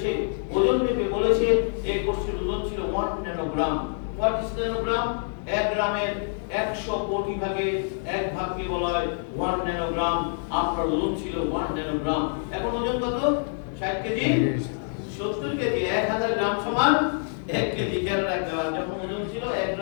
ওজন মেপে বলেছে এই কোষের ওজন ছিল 1 ন্যানোগ্রাম। What is nanogram? 1 গ্রামের 100 কোটি ভাগে 1 ভাগকে বলা হয় 1 ন্যানোগ্রাম। আপনার ওজন ছিল 1 ন্যানোগ্রাম। এখন ওজন কত? 60 কেজি, 70 কেজি। 1000 গ্রাম সমান 1 কেজি। খেয়াল রাখতে হবে, যখন ওজন ছিল 1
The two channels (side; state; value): right; silent; digital silence